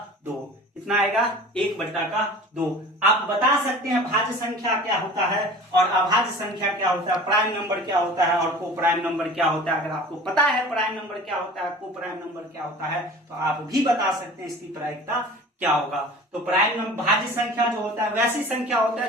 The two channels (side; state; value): both; normal; correlation 0.41